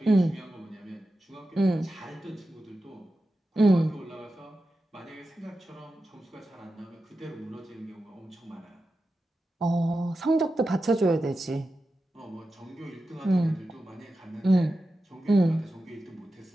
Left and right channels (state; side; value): normal; both; correlation 0.92